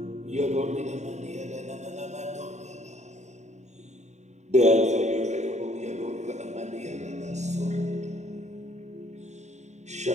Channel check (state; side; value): late; left; 0.33 ms